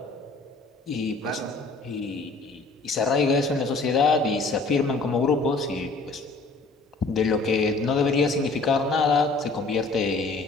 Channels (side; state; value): right; quieter; 3.6 dB